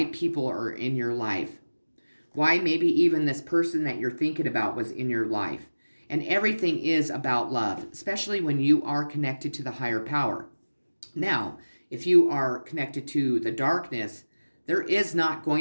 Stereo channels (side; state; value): both; inverted; correlation -1.00